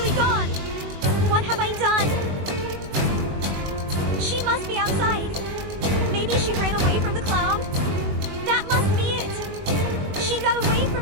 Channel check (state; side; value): late; left; 21 ms